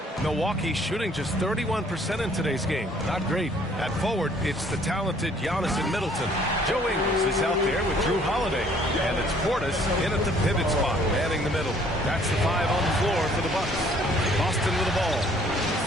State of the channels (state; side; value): normal; both; correlation 0.60